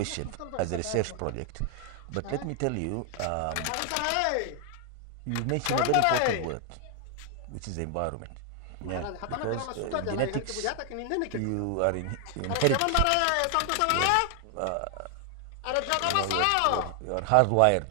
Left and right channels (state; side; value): different; both; correlation 0.00